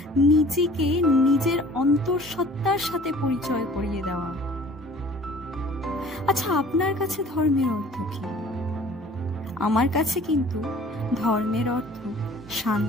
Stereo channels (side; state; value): both; normal; correlation 0.50